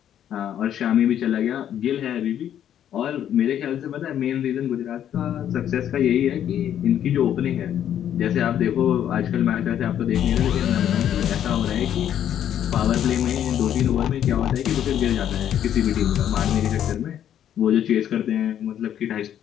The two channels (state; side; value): quieter; right; 10.2 dB